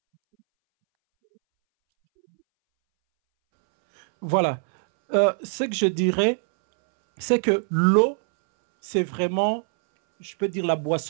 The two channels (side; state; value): left; silent; 64 dB below the other